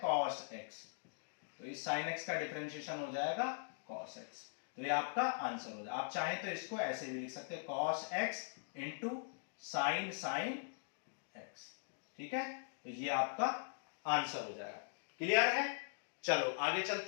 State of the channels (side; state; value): right; silent; digital silence